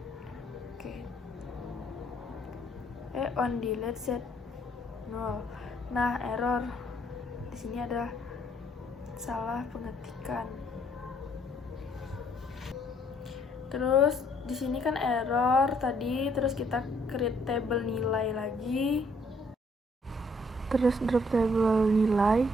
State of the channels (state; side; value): normal; both; correlation 0.66